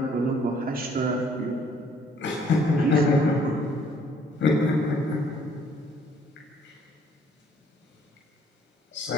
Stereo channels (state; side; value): normal; both; correlation 0.62